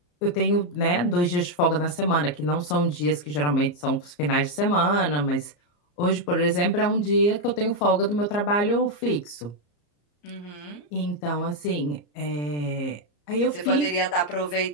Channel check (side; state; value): right; late; 34 ms